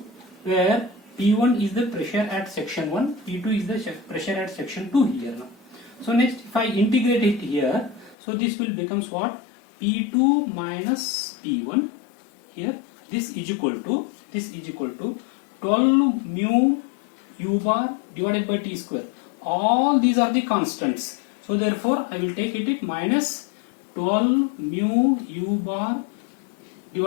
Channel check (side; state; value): right; drops out; at 8.2 s